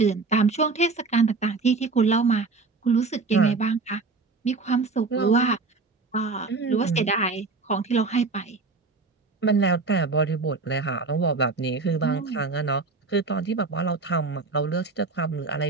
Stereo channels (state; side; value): quieter; left; 4.0 dB